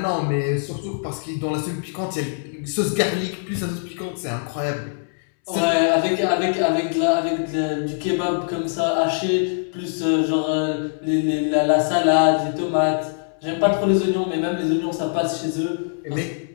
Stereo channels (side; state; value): right; silent; 64 dB below the other